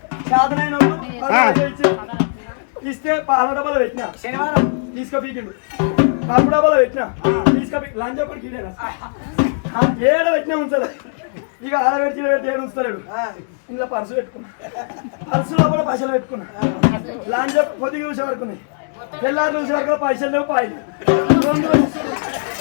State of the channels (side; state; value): right; silent; digital silence